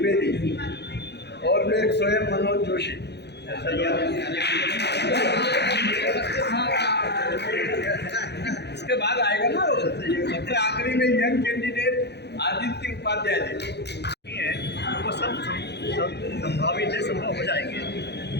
और मैं स्वयं मनोज जोशी। इसके बाद आएगा ना सबसे आखिरी में यंग कैंडिडेट आदित्य उपाध्याय जी है, वो सब संभावित है, संभव हो जाएंगे।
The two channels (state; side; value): late; right; 0.49 ms